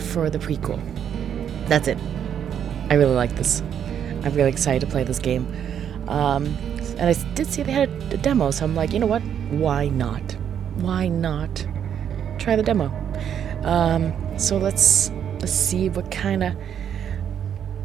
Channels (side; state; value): left; quieter; 8.9 dB